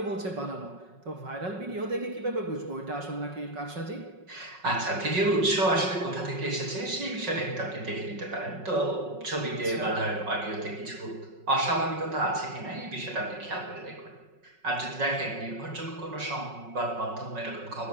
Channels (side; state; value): left; late; 5.4 ms